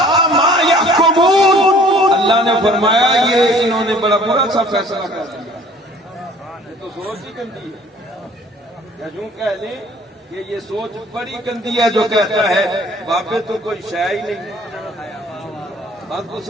ما یحکمون، اللہ نے فرمایا یہ انہوں نے بڑا برا سا فیصلہ کر دیا۔ یہ تو سوچ ہی گندی ہے، یا یوں کہہ لیں کہ یہ سوچ بڑی گندی ہے جو کہتا ہے باپے تو کوئی شے ہی نہیں۔ بات کو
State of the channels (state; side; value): normal; both; correlation 0.53